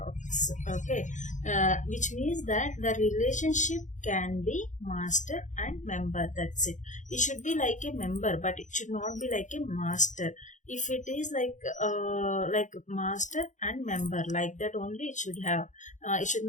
okay, which means that the relationship can be master and member, that's it. It should be like a member, but it should not be like a master. If it is like master and member, like that only it should have. It should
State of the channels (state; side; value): late; right; 0.36 ms